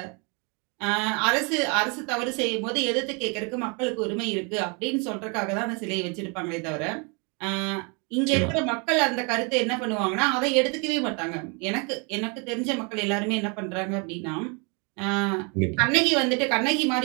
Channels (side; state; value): left; quieter; 33.0 dB